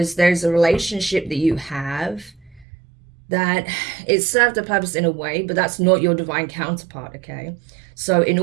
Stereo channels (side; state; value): left; drops out; at 2.7 s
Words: there's a relationship that you have that it served a purpose in a way, but that's not your divine counterpart, okay? So in